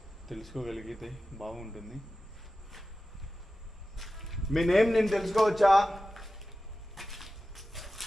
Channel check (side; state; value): both; normal; correlation 0.94